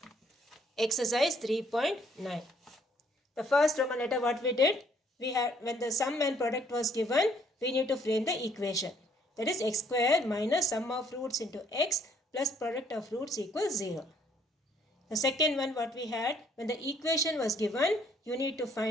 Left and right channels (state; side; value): normal; both; correlation 0.65